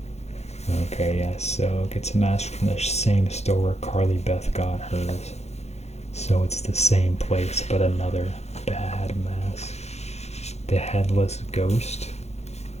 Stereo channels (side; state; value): right; late; 0.31 ms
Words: Okay, yes, so gets a mask from the same store where Carly Beth got hers. So it's the same place, but another bad mask. The Headless Ghost.